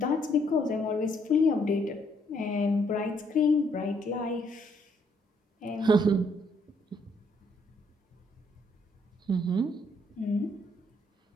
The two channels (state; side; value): normal; both; correlation 0.70